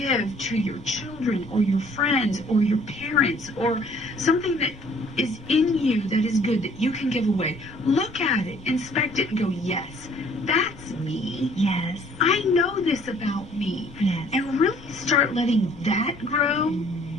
to your children or your friends or your parents, or something that is in you that is good that you can give away. Look at it, inspect it, and go, yes, that's me. Yes. I know this about me. Yes. And really start letting that grow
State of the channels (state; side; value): noise; left; rumble, 20 dB below the sound